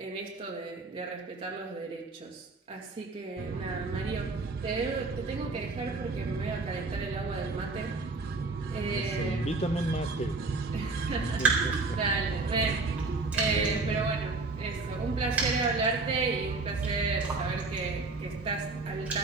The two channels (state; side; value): quieter; left; 3.5 dB